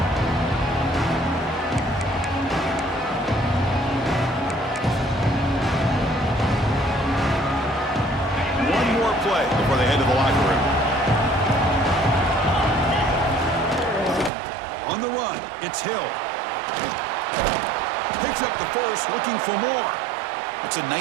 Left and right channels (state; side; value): drops out; left; at 14.3 s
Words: One more play before they head to the locker room. On the run, it's Hill. Picks up the first, looking for more. It's a